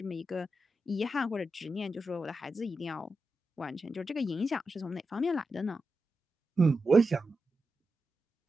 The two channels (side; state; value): both; normal; correlation 0.89